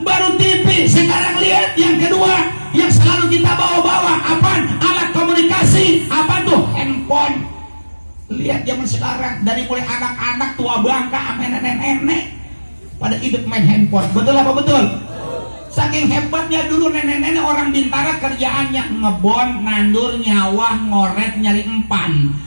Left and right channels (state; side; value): inverted; both; correlation -1.00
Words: Baru TV, sekarang lihat yang kedua yang selalu kita bawa-bawa. Apaan? Alat komunikasi. Apa tuh? Handphone. Lihat zaman sekarang dari mulai anak-anak tua bangka sampai nenek-nenek pada hidup main handphone. Betul apa betul? Saking hebatnya dulu nenek-nenek orang Bintara kerjaannya ngebon, nandur, nyawah, ngoret, nyari empan.